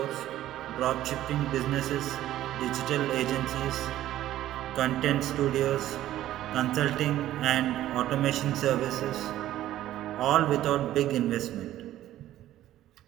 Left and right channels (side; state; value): left; quieter; 13.5 dB